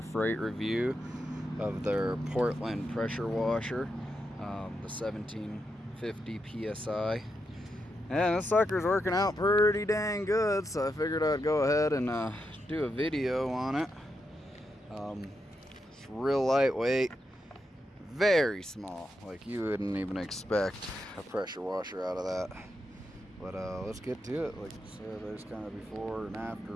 Freight review of their Portland pressure washer, the 1750 PSI. And this sucker's working out pretty dang good, so I figured I'd go ahead and do a video on it. It's real lightweight, very small, like you wouldn't even expect a pressure washer out of that. But let's get to it. Like I said, there's kind of before and after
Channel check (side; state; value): both; normal; correlation 0.85